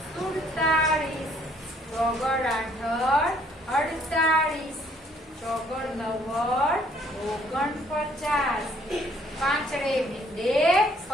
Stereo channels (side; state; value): both; normal; correlation 0.63